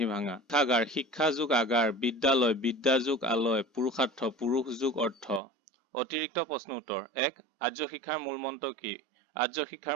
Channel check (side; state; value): left; drops out; at 5.4 s